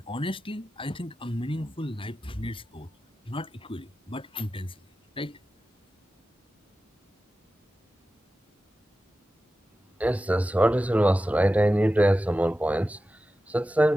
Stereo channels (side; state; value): both; normal; correlation 0.93